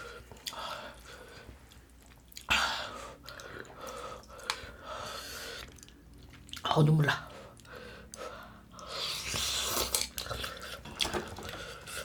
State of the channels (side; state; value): both; identical; correlation 1.00